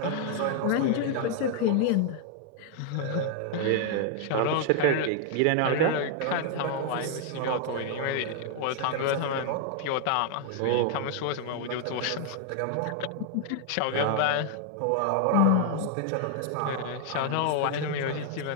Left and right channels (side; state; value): both; different; correlation 0.00